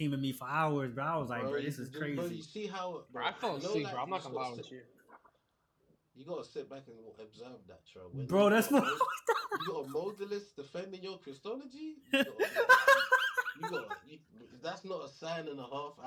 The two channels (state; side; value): identical; both; correlation 1.00